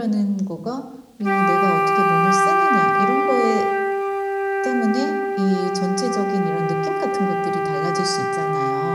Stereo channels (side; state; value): both; identical; correlation 1.00